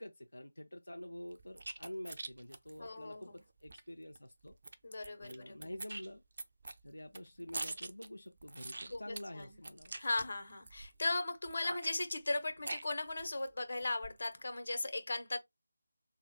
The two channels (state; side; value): inverted; both; correlation -0.96